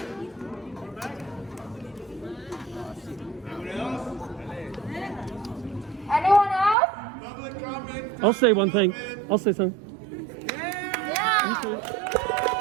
Anyone else? Public comment. I'll say one thing. I'll say something. Yeah.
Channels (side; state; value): left; drops out; at 6.8 s